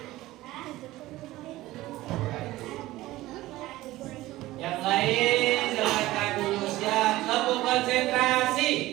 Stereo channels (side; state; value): left; quieter; 17.1 dB